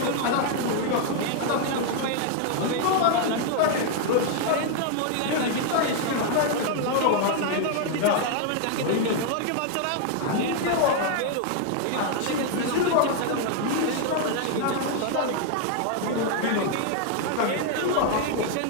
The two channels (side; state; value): both; different; correlation 0.00